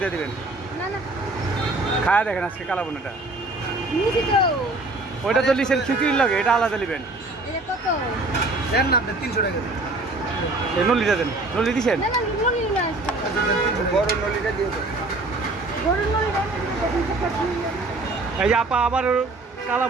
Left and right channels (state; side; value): quieter; left; 3.0 dB